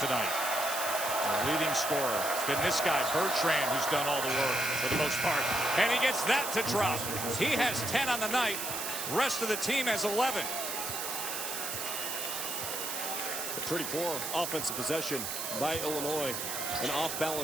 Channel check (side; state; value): right; noise; hiss, 3 dB below the sound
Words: The leading scorer. It's been this guy, Bertrand, who's done all the work for the most part. And he gets that to drop. He has 10 on the night. Rest of the team has 11. A pretty poor offensive possession by Illinois. An